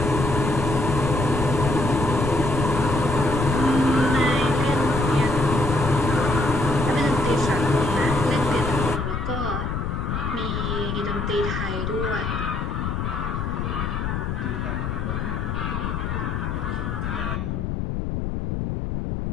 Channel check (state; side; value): noise; left; rumble, 2 dB below the sound